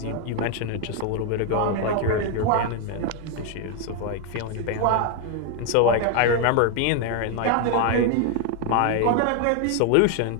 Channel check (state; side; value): different; both; correlation 0.01